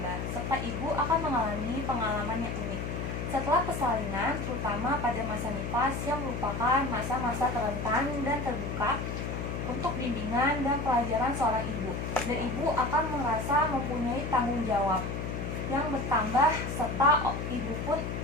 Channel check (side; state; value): left; noise; hum, 4 dB below the sound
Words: serta ibu akan mengalami pengalaman yang unik. Setelah persalinan, terutama pada masa nifas yang merupakan masa-masa rentan dan terbuka untuk bimbingan dan pelajaran seorang ibu, dan ibu akan merasa mempunyai tanggung jawab yang bertambah, serta ibu pun